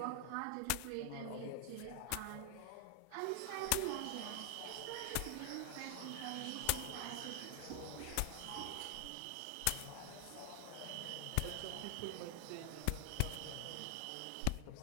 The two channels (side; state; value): both; different; correlation 0.00